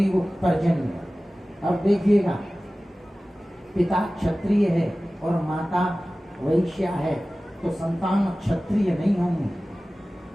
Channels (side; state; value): both; normal; correlation 0.97